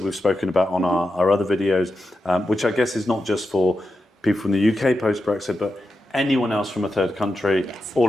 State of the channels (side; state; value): both; normal; correlation 0.89